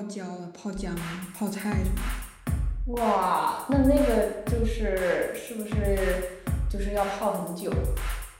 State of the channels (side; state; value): both; identical; correlation 1.00